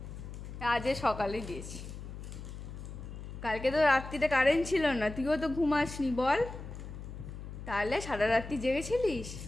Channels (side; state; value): left; noise; hum, 10 dB below the sound